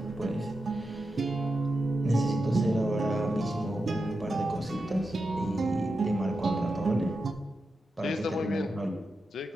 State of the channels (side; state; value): both; normal; correlation 0.89